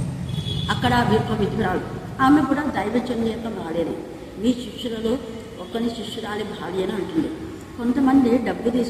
అక్కడ ఒక విధురాలు, ఆమె కూడా దైవజనుని యొక్క భార్యనే. మీ శిష్యులలో ఒకని శిష్యురాలి భార్య అని అంటుంది. కొంతమంది డబ్బు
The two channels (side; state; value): both; identical; correlation 1.00